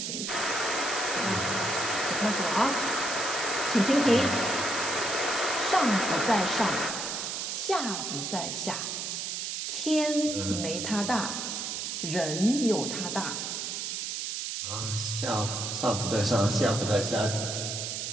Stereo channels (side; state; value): right; noise; hiss, 3 dB below the sound